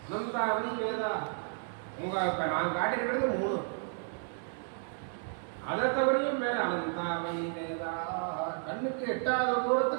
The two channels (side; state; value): left; silent; 56 dB below the other